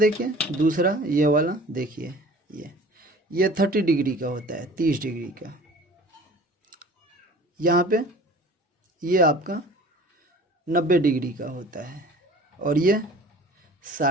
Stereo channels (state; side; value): normal; both; correlation 0.45